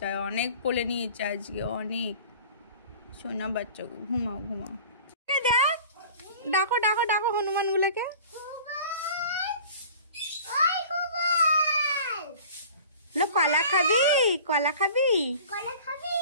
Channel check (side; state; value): both; inverted; correlation -0.44